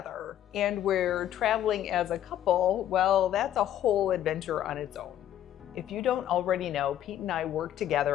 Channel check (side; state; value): right; quieter; 11.4 dB